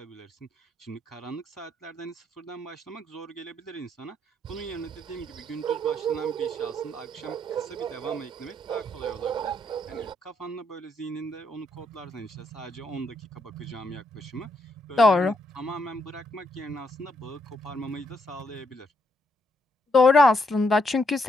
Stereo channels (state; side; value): normal; both; correlation 0.75